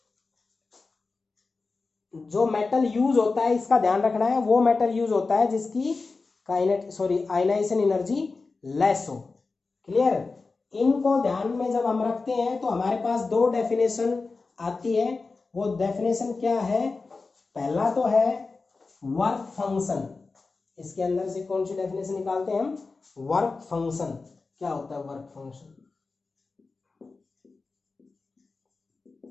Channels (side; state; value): right; quieter; 4.0 dB